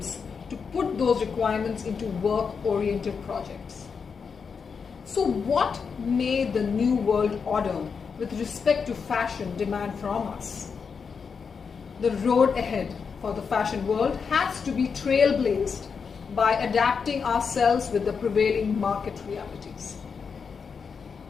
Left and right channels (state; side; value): quieter; right; 5.8 dB